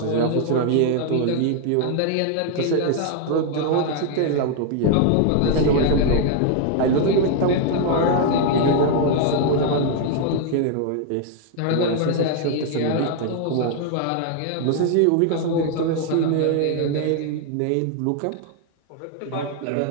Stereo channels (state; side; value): different; both; correlation 0.00